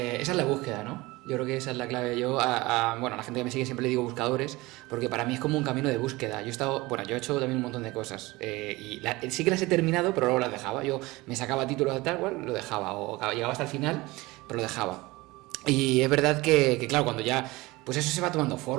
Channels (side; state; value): left; quieter; 21.2 dB